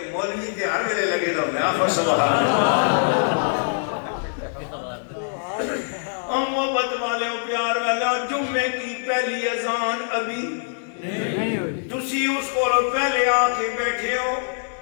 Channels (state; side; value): silent; right; 63 dB below the other